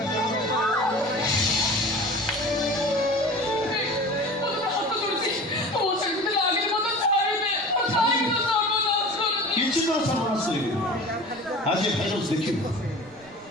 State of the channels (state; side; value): noise; right; rumble, 28 dB below the sound